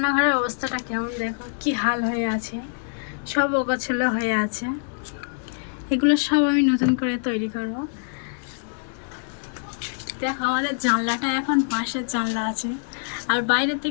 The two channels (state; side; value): silent; right; digital silence